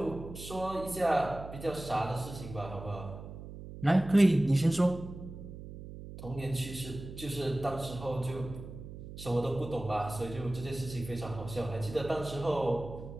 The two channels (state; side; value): noise; right; hum, 12 dB below the sound